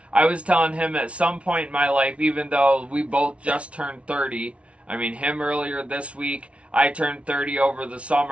I was telling him at some point in my life, even though we both just turned 30, I mean, him earlier this week, I turned 30 over the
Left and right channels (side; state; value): left; late; 0.062 ms